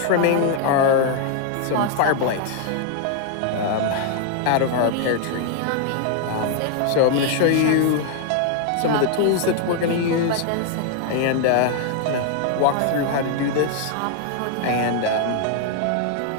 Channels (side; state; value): both; different; correlation 0.00